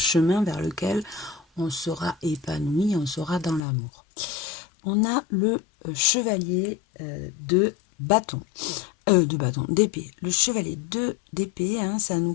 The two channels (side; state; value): right; drops out; at 3.7 s